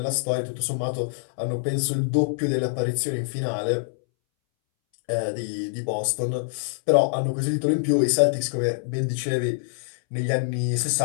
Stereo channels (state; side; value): silent; right; 62 dB below the other